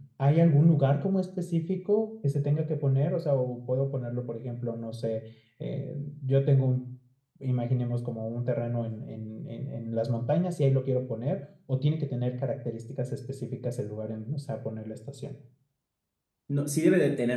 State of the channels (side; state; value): both; identical; correlation 1.00